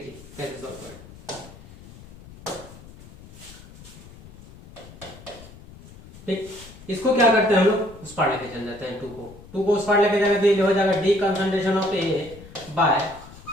कैसे सॉल्व करें। ठीक, इसको क्या करते हैं हम लोग, उस पार लेके चल जाते हैं, 2 को उस पार लेके जाएंगे तो ये हो जाएगा d concentration of A by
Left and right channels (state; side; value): noise; left; rumble, 19 dB below the sound